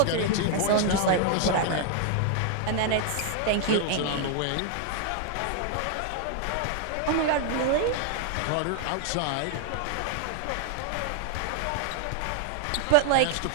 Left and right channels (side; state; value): both; different; correlation 0.00